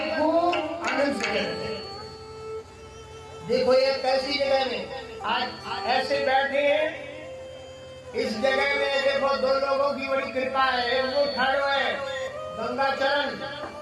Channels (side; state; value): both; identical; correlation 1.00